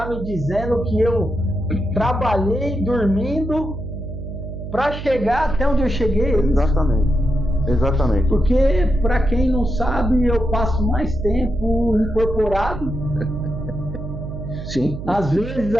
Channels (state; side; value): noise; right; hum, 9 dB below the sound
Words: me dizendo que eu trabalhei dormindo para chegar até onde eu cheguei? Exatamente. Porque, para quem não sabe, eu passo mais tempo incorporado. Sim. Às vezes